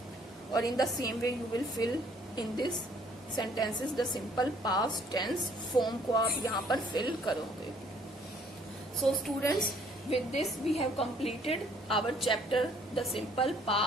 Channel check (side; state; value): both; normal; correlation 0.61